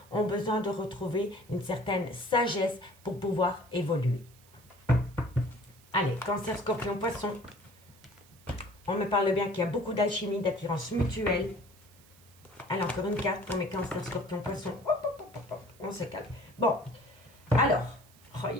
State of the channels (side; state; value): right; noise; hiss, 26 dB below the sound